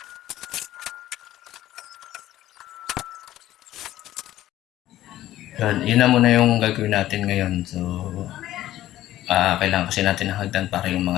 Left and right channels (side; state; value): right; quieter; 14.1 dB